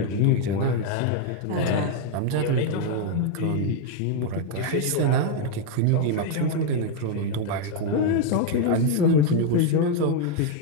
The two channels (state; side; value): different; both; correlation 0.00